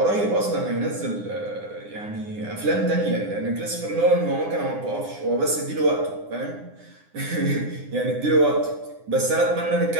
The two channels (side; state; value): left; late; 9.8 ms